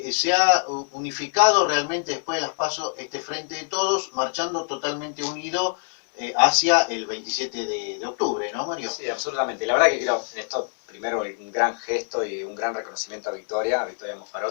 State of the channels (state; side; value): silent; right; 55 dB below the other